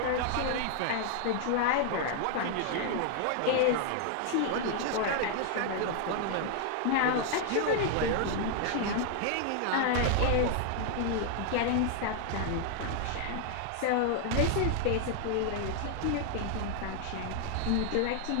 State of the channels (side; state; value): both; different; correlation 0.00